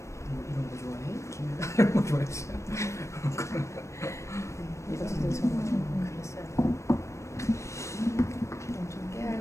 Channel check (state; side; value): late; right; 0.14 ms